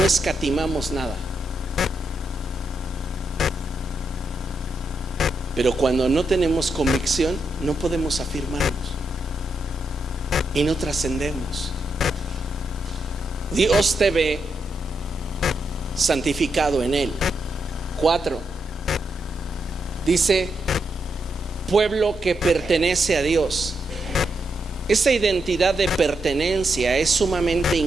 escatimamos nada. Pero cuando no tenemos convicción, no podemos afirmarnos y no trascendemos. Dios te ve santificado en Él. 4. Dice: pueblo que pertenece a Dios. Esa identidad de pertenencia es sumamente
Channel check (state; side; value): normal; both; correlation 0.82